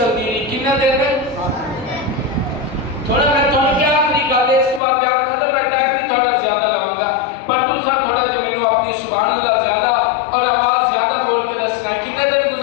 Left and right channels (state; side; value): drops out; right; at 4.8 s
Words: رہی. کتنے دن؟ تھوڑا میں تھوڑا کیا آخری گل ہے، اس کو آپ بیان ختم. میں ٹائم بھی تھوڑا زیادہ لگاؤں گا، پر تسا تھوڑا جو میرے اپنی سبحان اللہ زیادہ اور آواز زیادہ بول کے دسنا ہے. کتنے دن